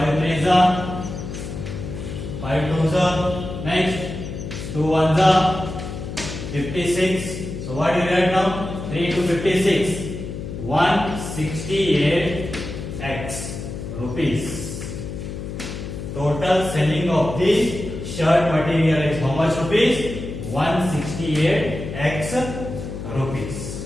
3s are, 5 2s are, next 2 1s are, 56. So what you will get now? 3 to 56, 168x rupees. Total selling of the shirt material is how much rupees? 168x rupees.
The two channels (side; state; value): left; noise; hum, 8 dB below the sound